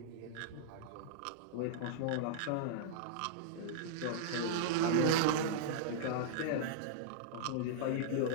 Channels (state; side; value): different; both; correlation -0.02